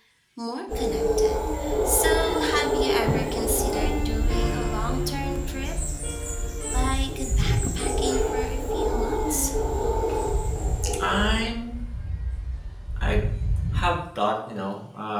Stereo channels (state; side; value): identical; both; correlation 1.00